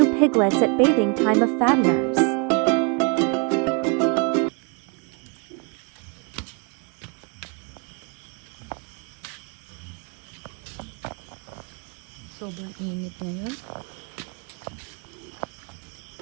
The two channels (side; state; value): left; quieter; 31.7 dB